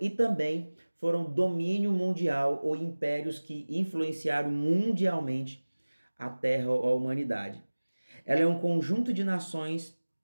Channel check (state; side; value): inverted; both; correlation -1.00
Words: também foram domínio mundial ou impérios que influenciaram mundialmente a terra ou a humanidade. Ela é um conjunto de nações,